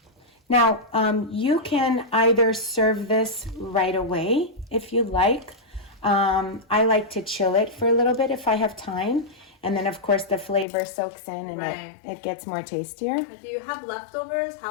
now you can either serve this right away if you like. I like to chill it for a little bit if I have time. And then, of course, the flavor soaks in, and it gets more tastier. Do you have leftovers?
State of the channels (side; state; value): right; drops out; at 10.7 s